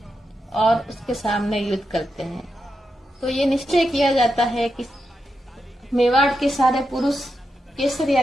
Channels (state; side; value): normal; both; correlation 0.87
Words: और उसके सामने युद्ध करते हैं। तो ये निश्चय किया जाता है कि मेवाड़ के सारे पुरुष केसरिया